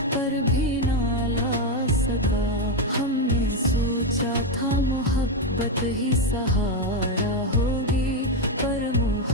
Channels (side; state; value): both; normal; correlation 0.07